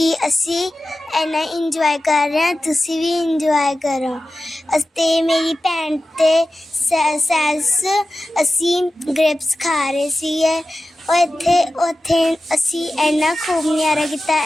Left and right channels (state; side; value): normal; both; correlation 0.94